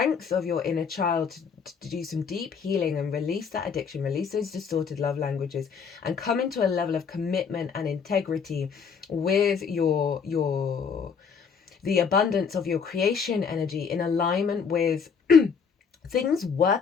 of your inner child to do some deep healing and release that addiction, release those distorted love languages, and come into a level of commitment and integrity with the abundance of your creation energy, in alignment with things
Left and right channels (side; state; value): right; quieter; 6.2 dB